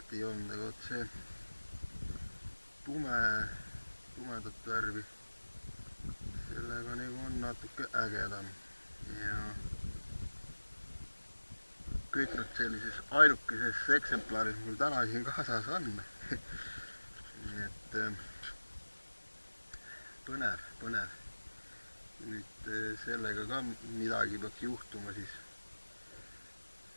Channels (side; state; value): both; inverted; correlation -1.00